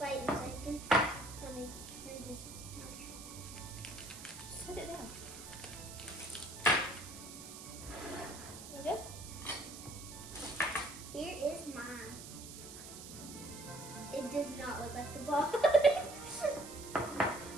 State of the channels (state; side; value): noise; right; hiss, 12 dB below the sound